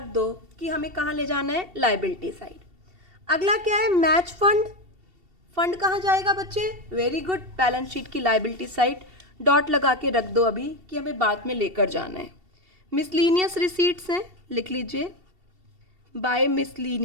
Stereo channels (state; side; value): late; left; 2.7 ms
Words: दो कि हमें कहाँ ले जाना है, लाइबिलिटी साइड। अगला क्या है, मैच फंड। फंड कहाँ जाएगा बच्चे, वेरी गुड, बैलेंस शीट की लाइबिलिटी साइड। डॉट लगा के रख दो अभी कि हमें बाद में लेकर जाना है। मिसलीनियस रिसीट्स हैं, लिख लीजिए by